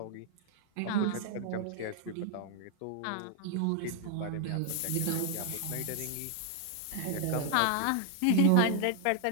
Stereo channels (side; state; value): both; different; correlation 0.00